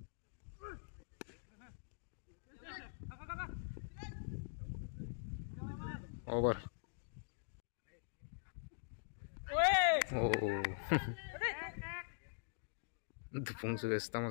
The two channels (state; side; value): silent; right; digital silence